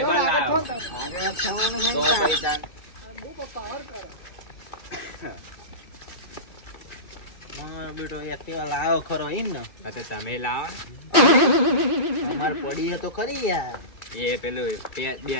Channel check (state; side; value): late; right; 2.5 ms